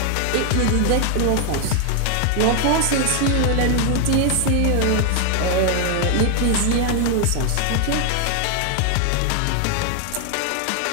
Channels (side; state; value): both; different; correlation 0.00